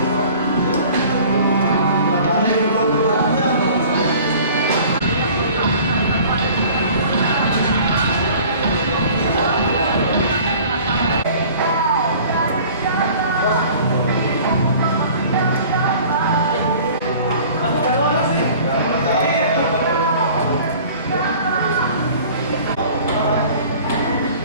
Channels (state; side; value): inverted; both; correlation -0.47